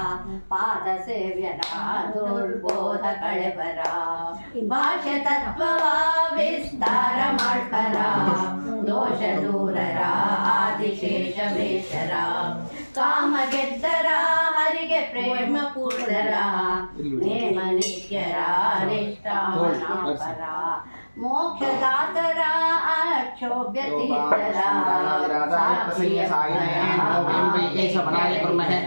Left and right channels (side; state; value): both; inverted; correlation -1.00